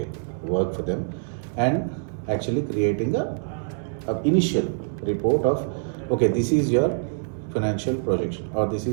work for them, and actually creating a initial report of, okay, this is your financial projection, or this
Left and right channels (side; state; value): left; silent; digital silence